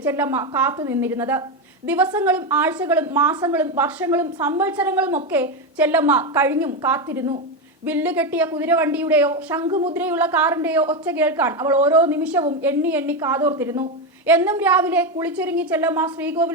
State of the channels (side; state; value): both; normal; correlation 0.11